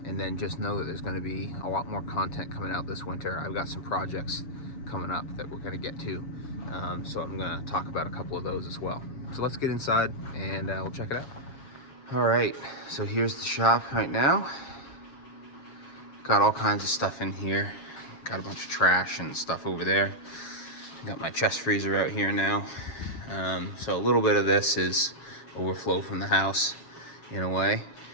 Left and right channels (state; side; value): late; right; 7.3 ms